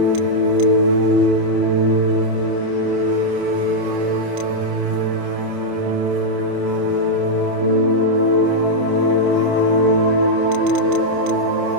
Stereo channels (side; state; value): left; late; 29 ms